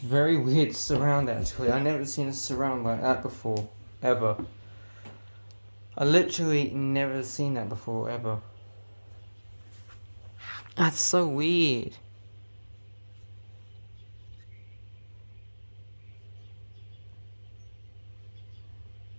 weird surround, actually. I've never seen a surround like that before, ever. I literally never seen that before, ever. That's so weird.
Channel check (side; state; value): both; inverted; correlation -1.00